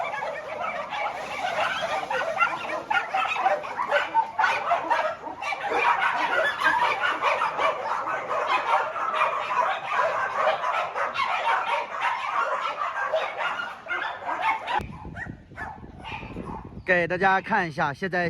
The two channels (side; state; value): both; identical; correlation 1.00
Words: 给大家看一下，现在